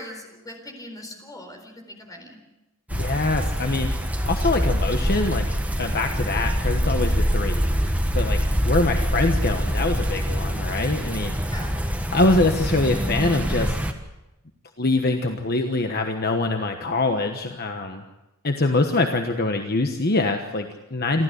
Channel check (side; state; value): both; normal; correlation 0.56